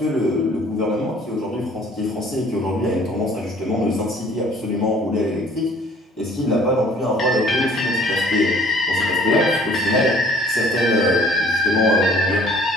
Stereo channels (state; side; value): normal; both; correlation 0.55